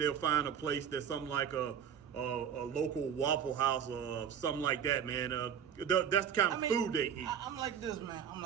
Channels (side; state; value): left; quieter; 8.3 dB